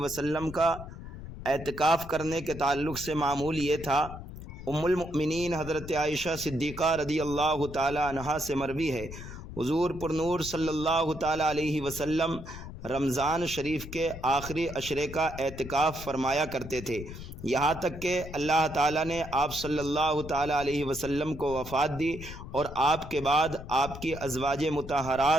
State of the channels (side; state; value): left; noise; rumble, 12 dB below the sound